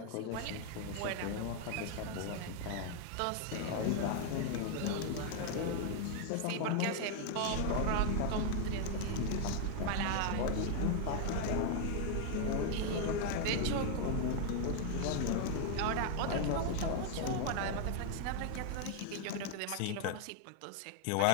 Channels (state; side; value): different; both; correlation 0.00